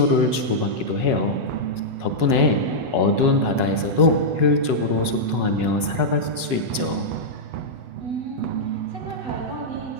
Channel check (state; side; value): late; left; 8.1 ms